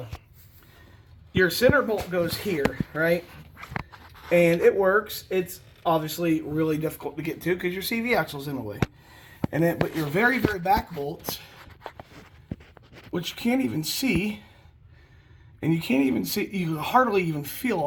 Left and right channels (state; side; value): identical; both; correlation 1.00